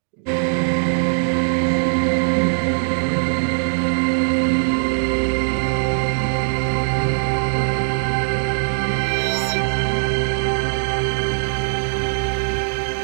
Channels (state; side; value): silent; left; digital silence